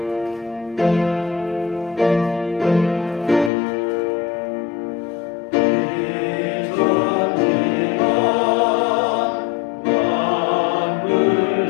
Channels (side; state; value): right; drops out; at 3.5 s